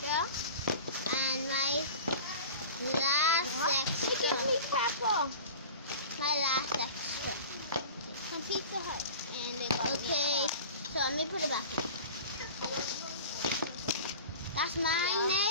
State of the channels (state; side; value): inverted; both; correlation -0.38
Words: And my last extra. Give me pepper. My last extra. From Pizza Hut. And okay. So let me put it back in. That's mine,